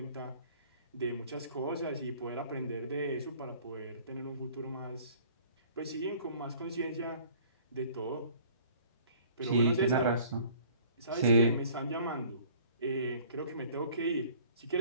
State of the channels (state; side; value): inverted; both; correlation -0.53